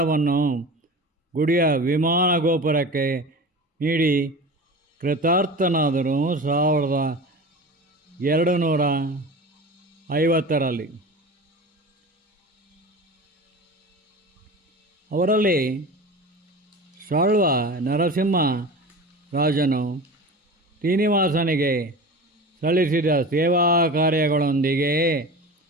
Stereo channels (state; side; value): normal; both; correlation 0.33